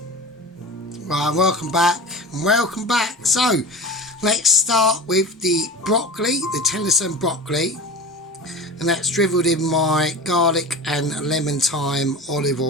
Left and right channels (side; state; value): both; normal; correlation 0.33